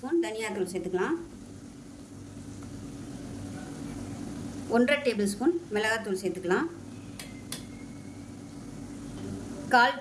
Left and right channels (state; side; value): identical; both; correlation 1.00